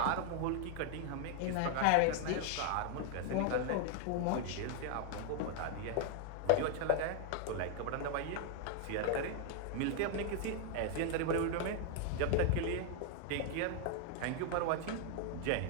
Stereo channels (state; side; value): different; both; correlation 0.00